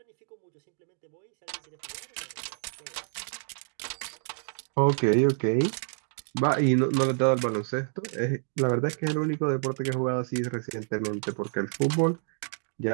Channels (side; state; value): left; silent; 59 dB below the other